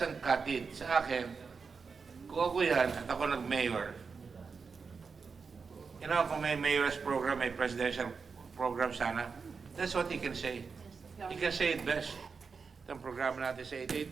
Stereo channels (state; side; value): quieter; left; 5.2 dB